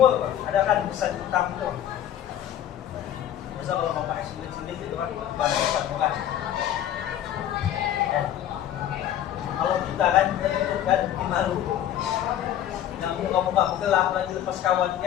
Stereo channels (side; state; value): right; quieter; 11.2 dB